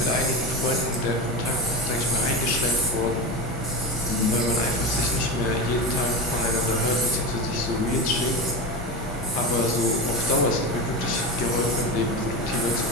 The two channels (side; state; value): both; normal; correlation 0.22